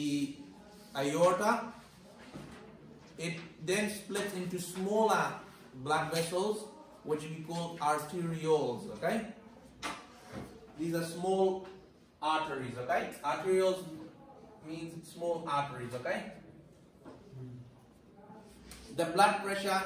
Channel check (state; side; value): identical; both; correlation 1.00